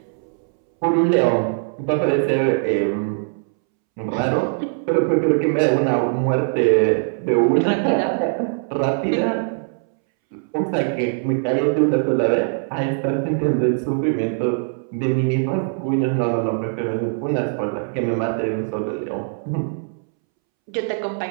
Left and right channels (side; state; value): left; silent; 65 dB below the other